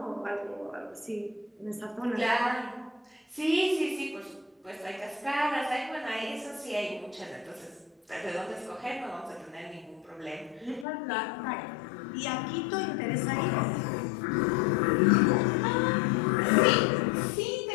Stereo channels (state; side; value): drops out; right; at 10.9 s